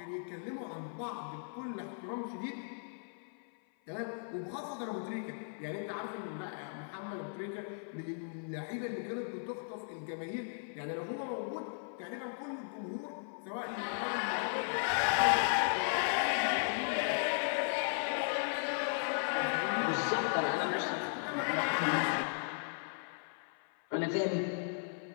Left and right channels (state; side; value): silent; right; 53 dB below the other